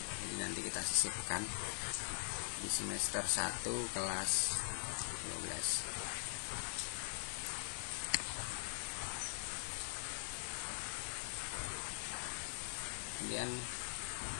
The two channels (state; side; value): silent; right; digital silence